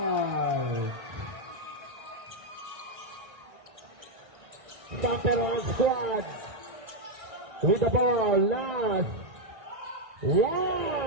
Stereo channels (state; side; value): late; left; 1.6 ms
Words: Santarohan squad with the ball. Last.